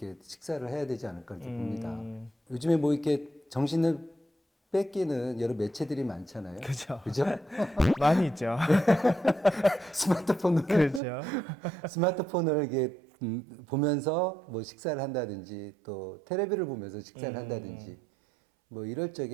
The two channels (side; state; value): left; drops out; at 11.0 s